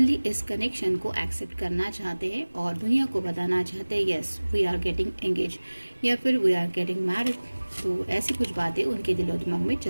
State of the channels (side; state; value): both; inverted; correlation -1.00